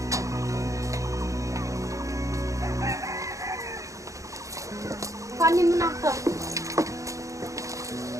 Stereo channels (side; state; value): left; late; 0.15 ms